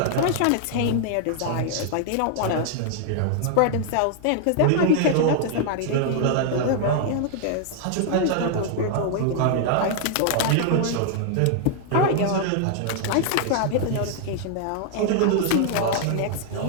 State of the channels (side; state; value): both; different; correlation 0.00